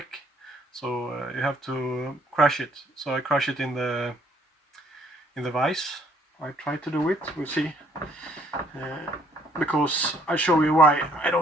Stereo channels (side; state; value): both; normal; correlation 0.63